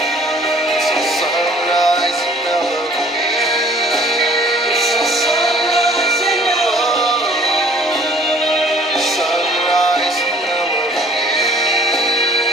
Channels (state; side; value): normal; both; correlation 0.54